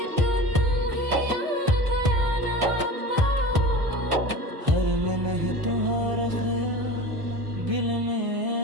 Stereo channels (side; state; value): left; late; 1.3 ms